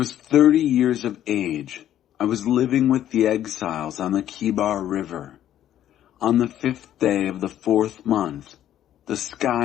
30 years of age, I was living with the exiles on the Kibar River. On the 5th day of the 4th month, the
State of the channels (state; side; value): quieter; right; 11.6 dB